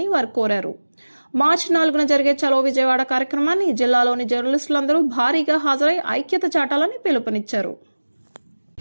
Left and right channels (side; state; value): both; inverted; correlation -1.00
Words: వారు కోరారు. మార్చి 4న జరిగే చలో విజయవాడ కార్యక్రమాన్ని జిల్లాలోని జర్నలిస్టులందరూ భారీగా హాజరై ఐక్యత చాటాలని పిలుపునిచ్చారు.